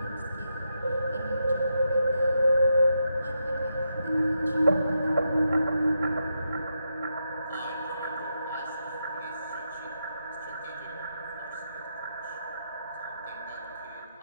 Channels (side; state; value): both; inverted; correlation -0.84